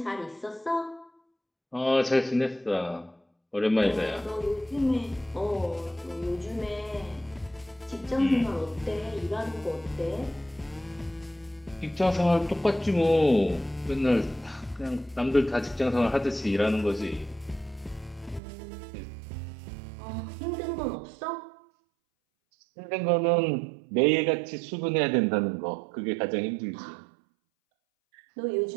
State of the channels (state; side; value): drops out; left; at 18.4 s